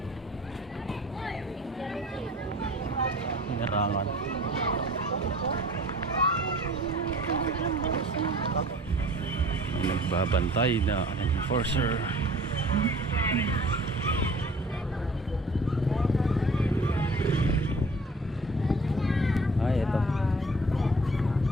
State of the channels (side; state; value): both; normal; correlation 0.48